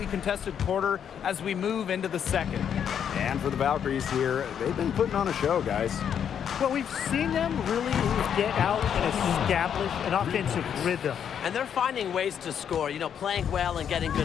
contested quarter as we move into the second. And for the Valkyries here, they've been putting on a show, guys. Well, we've seen them really get out and establish an offensive rhythm. And they're finding ways to score, you know, playing well and getting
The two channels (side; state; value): right; quieter; 8.4 dB